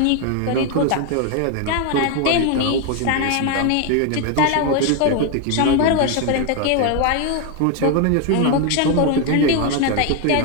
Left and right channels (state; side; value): different; both; correlation 0.01